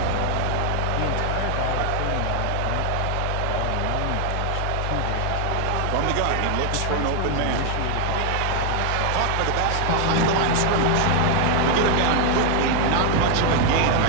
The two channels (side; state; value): both; different; correlation 0.00